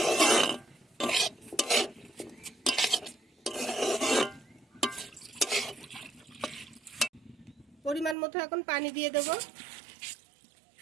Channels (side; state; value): left; drops out; at 8.2 s